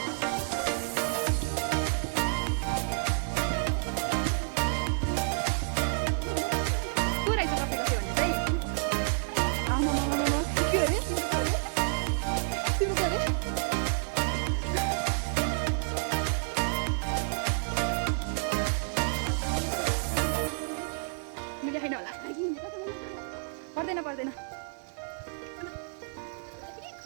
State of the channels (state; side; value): silent; left; 58 dB below the other